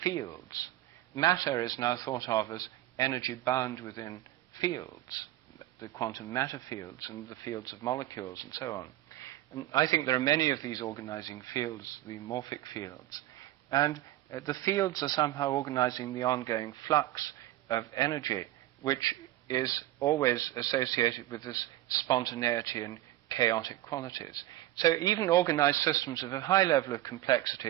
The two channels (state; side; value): quieter; left; 15.0 dB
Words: fields. Matter is now thought of as energy bound within fields, the quantum matter fields and the fields of molecules and so on. And I think there are many of these organizing fields, the morphic fields. And the fields are somehow organizing the ongoing flux of energy, which is always associated with this spontaneity and chaotic qualities. So even organized systems of a high level of